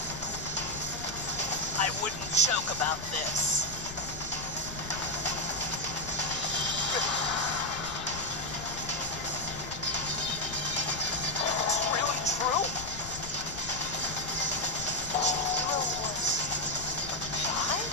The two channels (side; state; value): left; noise; rumble, 12 dB below the sound